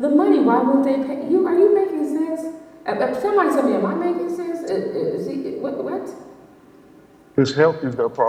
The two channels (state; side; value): identical; both; correlation 1.00